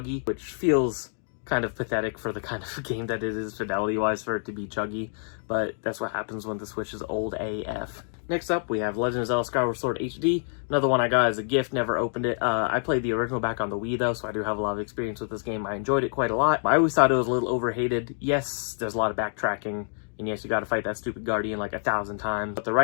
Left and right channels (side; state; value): right; silent; digital silence